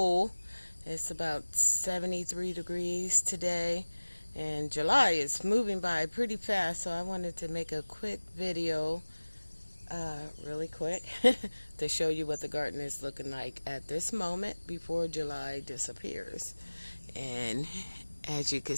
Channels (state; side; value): inverted; both; correlation -1.00